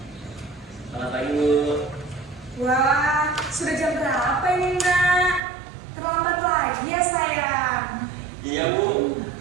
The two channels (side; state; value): left; drops out; at 5.4 s